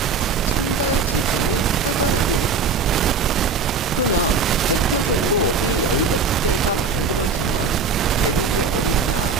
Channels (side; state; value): left; quieter; 5.1 dB